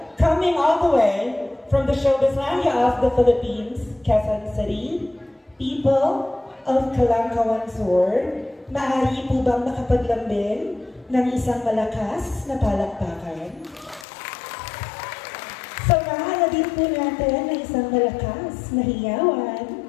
coming all the way from the Showbizlandia of the Philippines, Quezon City, people of Calangcawan Sur, maaari po bang makapaglambing ng isang malakas na palakpakan? Samahan na din po natin ng isang malakas na hiyawan.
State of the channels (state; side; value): drops out; right; at 14.1 s